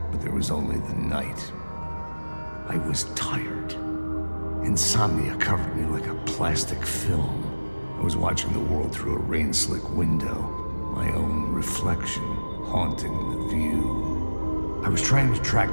but there was only the night. I was tired. Insomnia covered me like a plastic film. I was watching the world through a rain-slick window, my own reflection haunting the view. I was trying to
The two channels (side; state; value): both; inverted; correlation -1.00